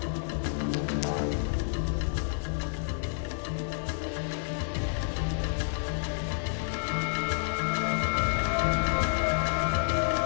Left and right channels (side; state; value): right; silent; digital silence